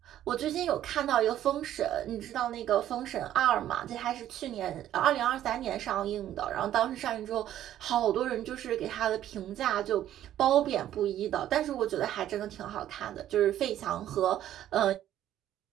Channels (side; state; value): left; quieter; 11.9 dB